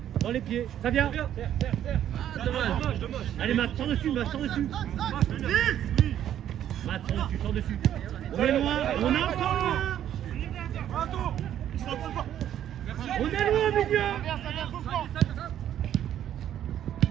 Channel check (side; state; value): left; quieter; 10.8 dB